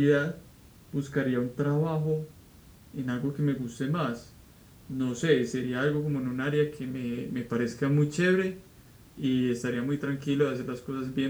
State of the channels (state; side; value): identical; both; correlation 1.00